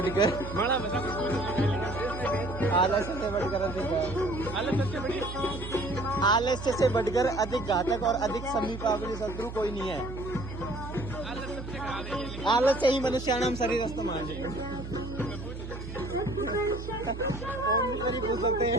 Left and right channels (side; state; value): right; noise; hum, 9 dB below the sound